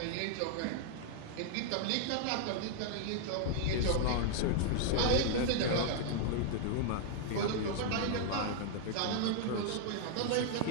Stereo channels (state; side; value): different; both; correlation -0.01